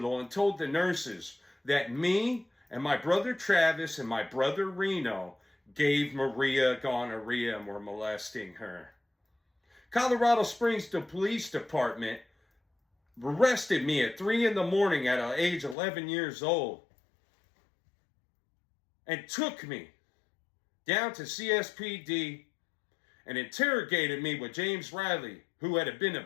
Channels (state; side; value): drops out; right; at 15.8 s